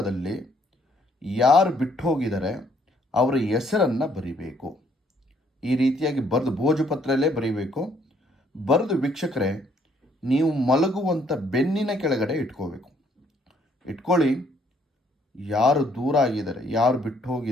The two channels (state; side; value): normal; both; correlation 0.66